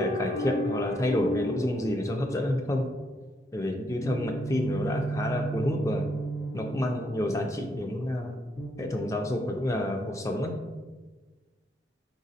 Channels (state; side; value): normal; both; correlation 0.75